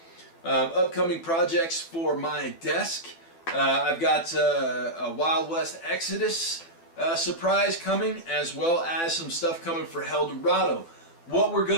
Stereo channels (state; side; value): late; right; 12 ms